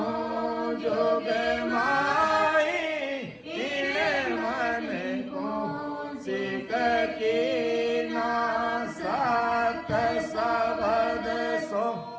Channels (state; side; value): identical; both; correlation 1.00